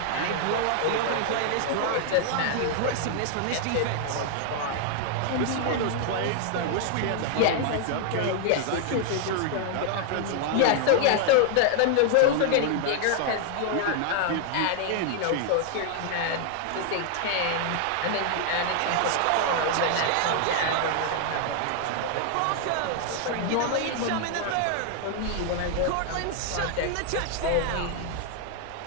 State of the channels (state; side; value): different; both; correlation 0.00